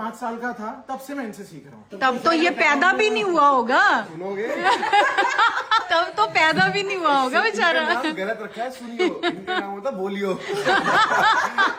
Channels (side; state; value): both; identical; correlation 1.00